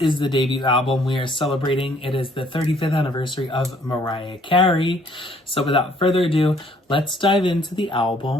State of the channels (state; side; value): normal; both; correlation 0.62